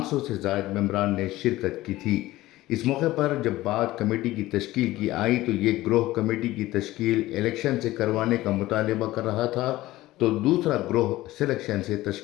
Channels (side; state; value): right; quieter; 17.0 dB